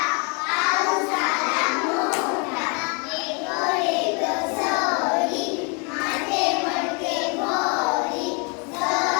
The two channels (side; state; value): right; quieter; 33.5 dB